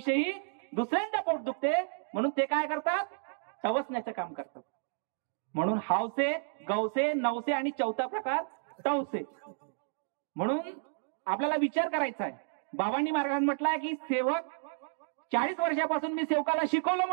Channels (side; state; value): left; silent; digital silence